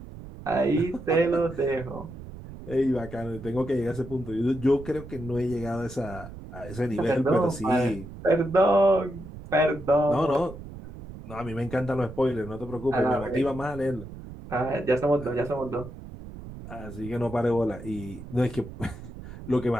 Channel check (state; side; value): noise; right; rumble, 13 dB below the sound